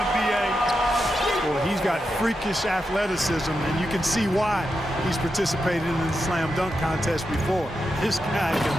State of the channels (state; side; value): normal; both; correlation 0.87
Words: B.A. Well, he's got freakish athleticism, and you can see why he's participated in the slam dunk contest before. This guy